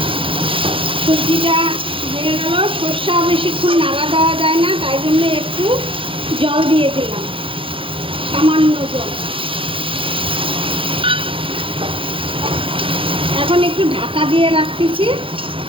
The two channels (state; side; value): late; left; 0.25 ms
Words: সবজিটা হয়ে গেল। সর্ষা বেশিক্ষণ নাড়া দেওয়া যায় না, তাই জন্য একটু জল দিয়ে দিলাম, সামান্য জল। এখন একটু ঢাকা দিয়ে রাখতেছি,